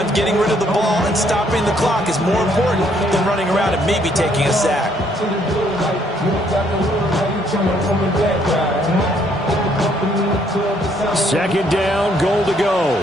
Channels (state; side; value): normal; both; correlation 0.68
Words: getting rid of the ball and stopping the clock is more important than running around and maybe taking a sack. Second down, goal to go.